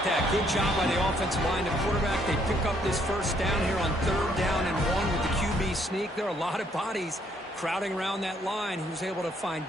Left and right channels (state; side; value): normal; both; correlation 0.68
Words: that? Good job by the offensive line. The quarterback, they pick up this first down here on 3rd down and 1 with the QB sneak. There are a lot of bodies crowding around that line. He was able to find